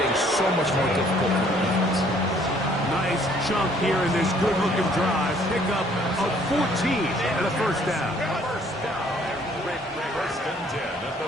so much more difficult for the defense. Nice chunk here in this good-looking drive. Pick up of 14 and a first down. First and 10 at the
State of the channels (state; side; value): normal; both; correlation 0.61